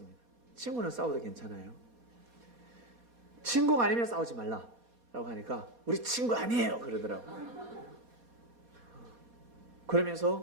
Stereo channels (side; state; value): left; late; 4.2 ms